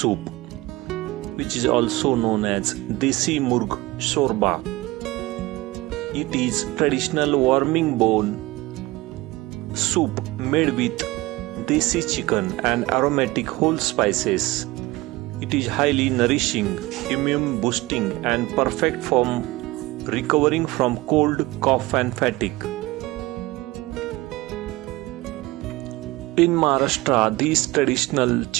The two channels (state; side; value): quieter; left; 20.2 dB